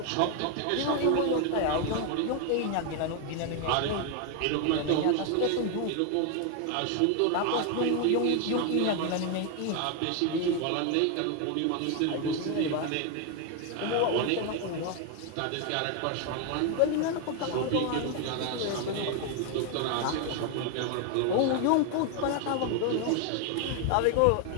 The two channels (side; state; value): both; different; correlation 0.01